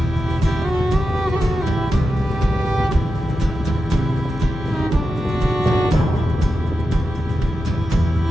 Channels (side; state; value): left; noise; hum, 11 dB below the sound